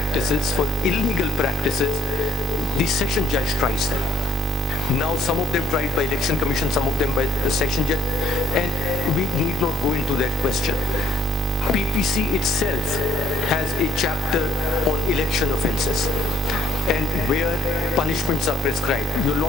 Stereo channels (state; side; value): normal; both; correlation 0.66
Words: for illegal practices, the session judge tries them. Now some of them tried by Election Commission, some of them by the session judge, and we need not go into that question. PPC itself has a chapter on election offences and where punishments are prescribed. Your